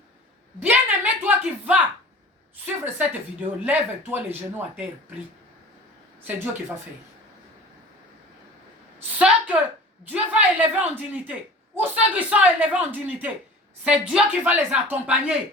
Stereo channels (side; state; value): both; normal; correlation 0.41